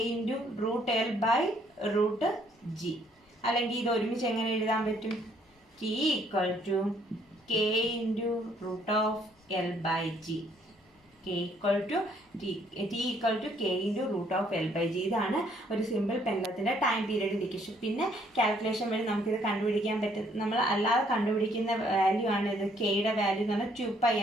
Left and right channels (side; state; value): both; normal; correlation 0.66